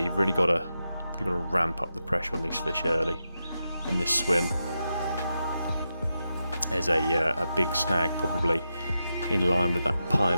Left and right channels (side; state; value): both; inverted; correlation -0.88